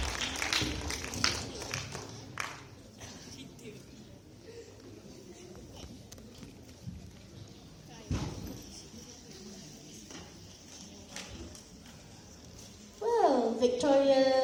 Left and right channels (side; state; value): both; identical; correlation 1.00